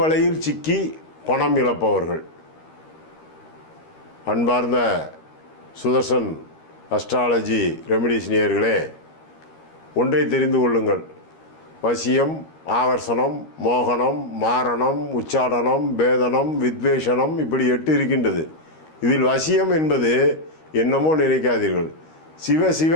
சிக்கி பணம் இழப்பவர்கள். அன்பார்ந்த சுதர்சன் அஸ்ட்ராலஜி ரெமிடிஸ் நேயர்களே, ஒன்றை தெரிந்து கொள்ளுங்கள். வசியம், ஆகர்ஷணம், மோகனம், மாரணம், உச்சாடனம், பேதனம், வித்வேஷனம், இப்படி 8 இருக்கின்றது. இதில் வசியம் என்பது என்னமோ நினைக்காதீர்கள். சிவ சிவ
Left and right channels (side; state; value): right; late; 13 ms